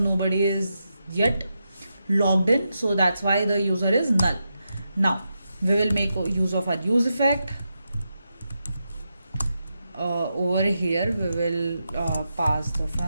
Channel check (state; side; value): inverted; both; correlation -0.86